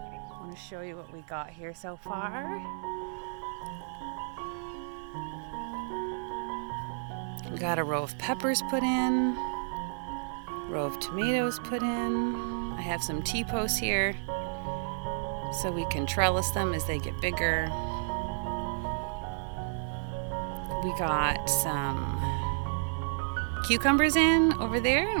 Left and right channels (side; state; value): left; silent; digital silence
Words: want to show you what we got here so far. We got a row of peppers put in, row of tomatoes put in. I have some T-posts here so we can trellis them as they get bigger. We got some cucumbers in over there,